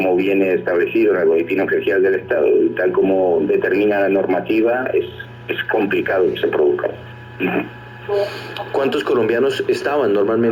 viene establecido en el Boletín Oficial del Estado y tal como determina la normativa, es complicado que se produzca. ¿Cuántos colombianos estaban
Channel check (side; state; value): both; identical; correlation 1.00